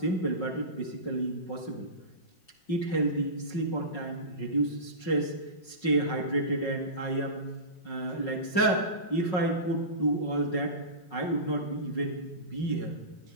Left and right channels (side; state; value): right; late; 5.4 ms